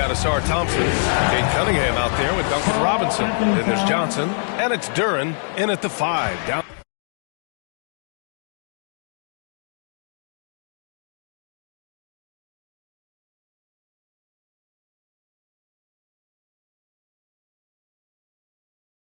Asar Thompson, Kate Cunningham out there with Duncan Robinson. Then there's Johnson, and it's Duren in at the 5. Down.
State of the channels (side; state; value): right; silent; 61 dB below the other